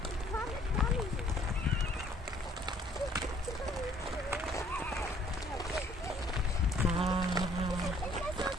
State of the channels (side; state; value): both; normal; correlation 0.60